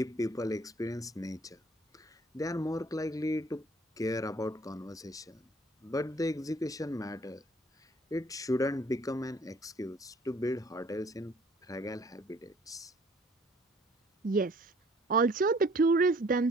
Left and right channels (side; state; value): both; normal; correlation 0.56